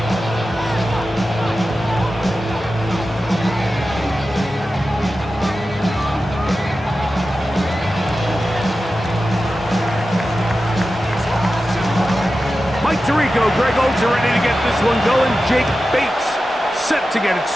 Mike Tirico, Greg Olds are ready to get this one going. Jake Bates set to get it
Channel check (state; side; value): normal; both; correlation 0.93